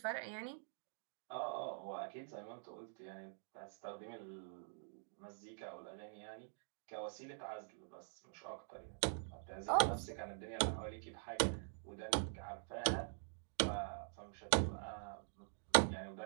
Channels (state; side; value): silent; left; digital silence